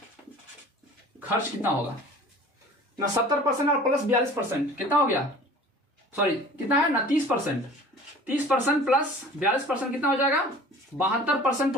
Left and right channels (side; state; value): both; normal; correlation 0.44